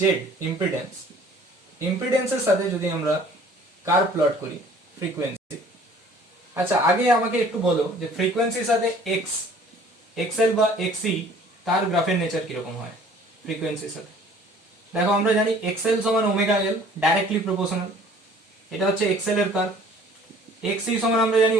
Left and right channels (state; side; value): normal; both; correlation 0.52